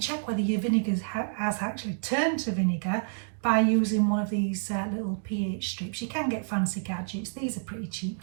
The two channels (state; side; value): silent; left; digital silence